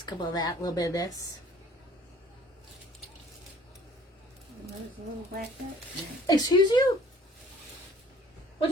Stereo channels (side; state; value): both; normal; correlation 0.53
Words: couple of that, a little bit of this. There's a little black hat. Excuse you? What